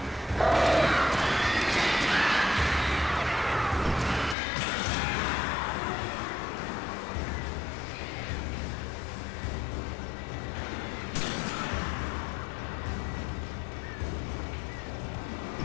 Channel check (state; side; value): drops out; right; at 4.4 s